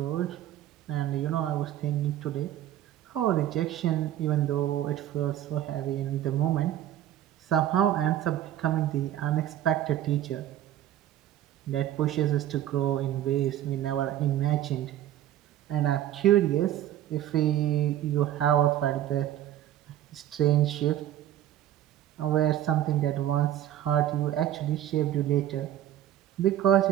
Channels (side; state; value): left; quieter; 12.1 dB